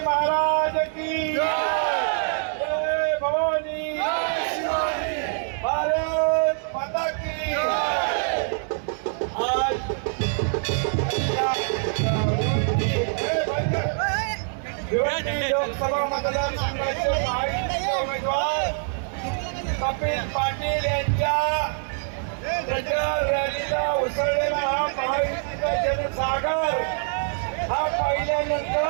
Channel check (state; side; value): silent; left; 62 dB below the other